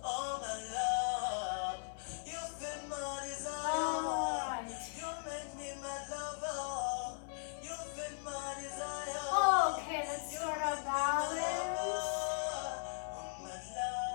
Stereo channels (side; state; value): right; silent; 52 dB below the other